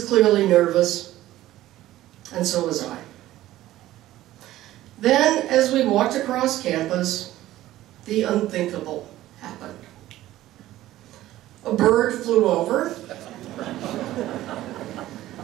clearly nervous, and so was I. Then, as we walked across campus, the unthinkable happened. A bird flew over.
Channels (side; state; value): left; quieter; 14.9 dB